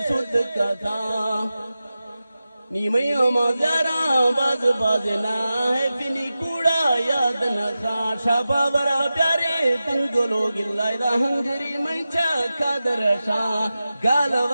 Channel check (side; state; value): both; inverted; correlation -0.93